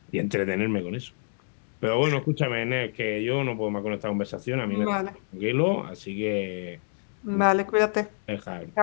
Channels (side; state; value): right; silent; 60 dB below the other